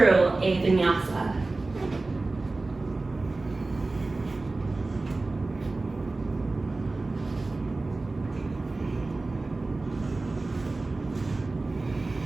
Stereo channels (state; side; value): quieter; left; 3.3 dB